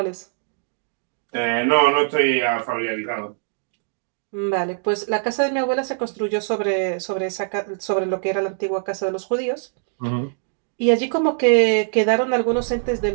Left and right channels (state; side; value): silent; left; digital silence